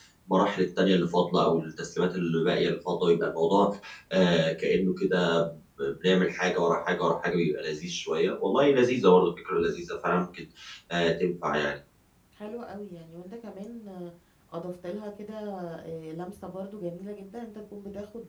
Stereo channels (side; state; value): both; identical; correlation 1.00